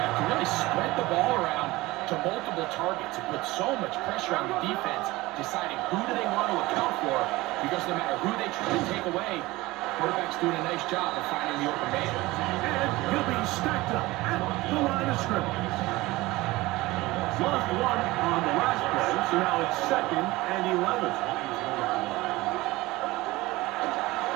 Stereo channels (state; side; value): quieter; left; 19.8 dB